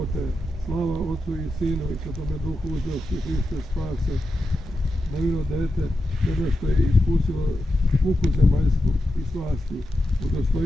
Slava Otcu i Sinu i Svetome Duhu, uzeo si Hriste spase, nevino dete, tebe što je iskusilo muku zemaljsku i slasti,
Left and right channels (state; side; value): normal; both; correlation 0.89